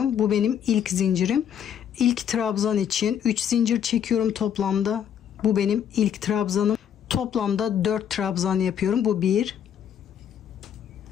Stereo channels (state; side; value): quieter; right; 8.9 dB